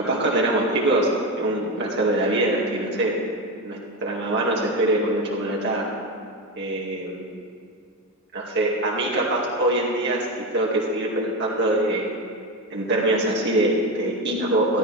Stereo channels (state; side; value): normal; both; correlation 0.16